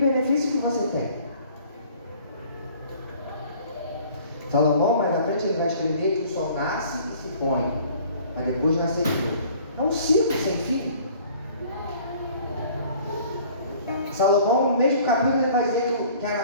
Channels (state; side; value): inverted; both; correlation -0.52